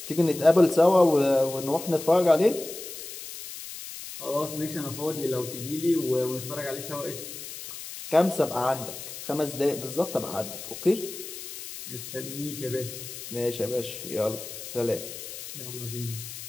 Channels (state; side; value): noise; left; hiss, 11 dB below the sound